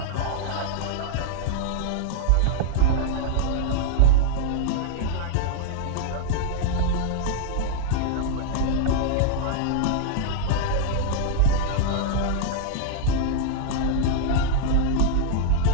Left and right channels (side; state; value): both; different; correlation -0.01